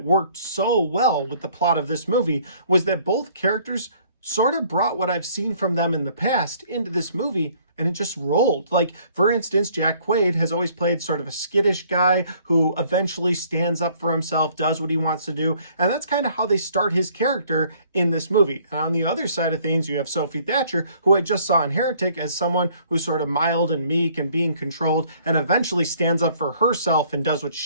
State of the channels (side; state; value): both; inverted; correlation -0.60